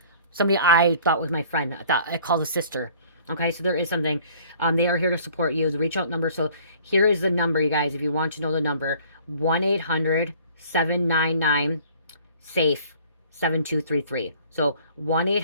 Somebody I thought was my friend. I called a sister. Okay, so there is something. They are here to support you. The reach out number. So here is the number, you guys, if you want to know the number. 1-800-799-SAFE. 7233. So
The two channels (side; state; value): both; inverted; correlation -0.53